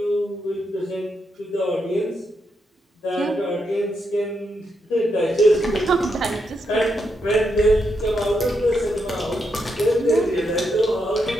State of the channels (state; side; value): normal; both; correlation 0.81